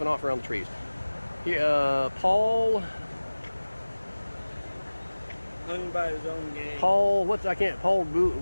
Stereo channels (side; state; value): both; inverted; correlation -1.00